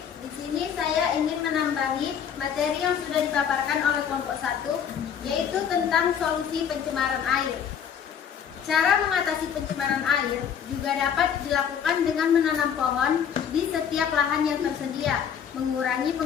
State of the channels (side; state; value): right; quieter; 8.0 dB